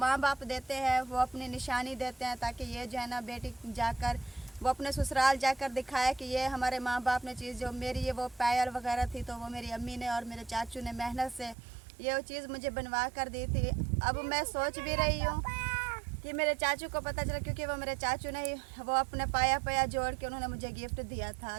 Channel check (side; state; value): left; drops out; at 11.6 s